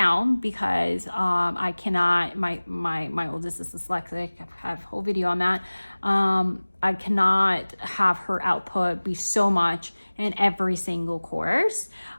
because I cannot. My oldest is dyslexic. I have a whole video on that. I cannot have her output be so much in every single course,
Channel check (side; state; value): both; inverted; correlation -1.00